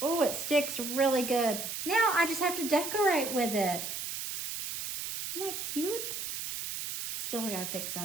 it sticks really good. Now I just have to decorate with it. Isn't that cute? Still gotta fix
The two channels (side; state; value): right; noise; hiss, 5 dB below the sound